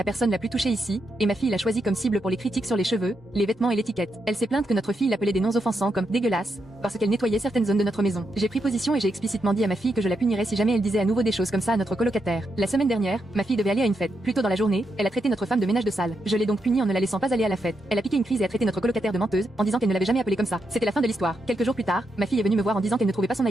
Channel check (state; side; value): normal; both; correlation 0.83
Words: personne la plus touchée ici, et ma fille l'a choisi comme cible pour les critiques sur les cheveux, les vêtements et l'étiquette. Elle s'est plainte que notre fille l'appelait des noms offensants comme dégueulasse, parce qu'elle nettoyait certaines zones de notre maison. J'ai pris position et j'ai explicitement dit à ma fille que je la punirais si jamais elle disait à nouveau des choses comme ça à notre colocataire. La semaine dernière, ma fille devait aller à une fête. Plus tôt dans la journée, elle a traité notre femme de ménage de salle. Je l'ai donc punie en ne la laissant pas aller à la fête. Elle a piqué une crise et a traité notre colocataire de menteuse, en disant qu'elle ne l'avait jamais appelée comme ça. C'était la fin de l'histoire. Quelques jours plus tard, ma fille est venue me voir en disant qu'elle ne trouvait pas son